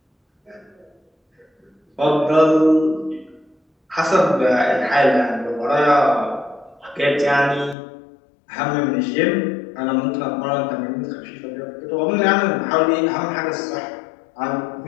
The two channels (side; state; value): right; drops out; at 7.8 s